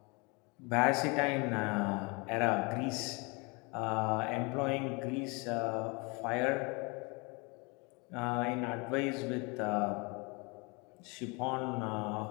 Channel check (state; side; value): quieter; right; 29.3 dB